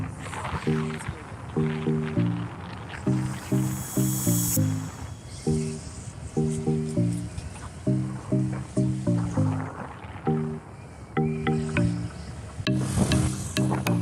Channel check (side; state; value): both; identical; correlation 1.00